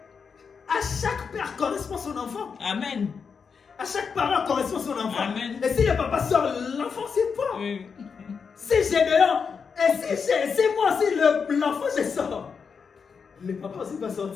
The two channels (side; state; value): right; quieter; 5.9 dB